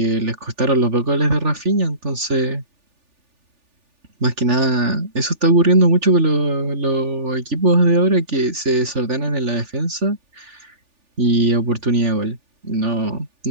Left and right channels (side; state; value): left; late; 3.4 ms